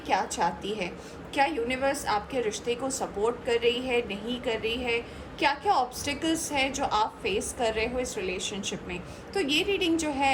चाहती है? क्या यूनिवर्स आपके रिश्ते को सपोर्ट कर रही है, नहीं कर रही है? क्या क्या ऑब्स्टिकल्स है जो आप फेस कर रहे हो इस रिलेशनशिप में? तो ये रीडिंग जो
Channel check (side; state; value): both; identical; correlation 1.00